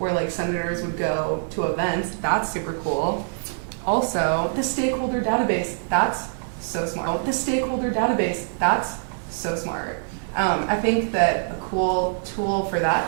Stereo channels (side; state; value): left; silent; 62 dB below the other